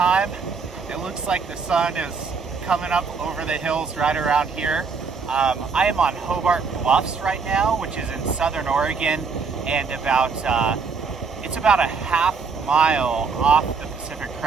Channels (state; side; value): quieter; left; 5.1 dB